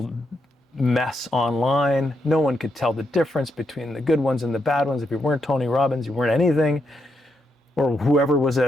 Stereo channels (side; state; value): both; normal; correlation 0.81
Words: mess online. No one could tell the difference between the good ones and the bad ones. If you weren't Tony Robbins, you weren't anything, or whoever was